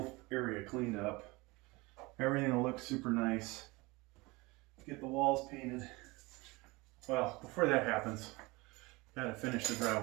area cleaned up. Everything will look super nice. Get the walls painted. Well, before that happens, gotta finish the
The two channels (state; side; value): quieter; left; 23.8 dB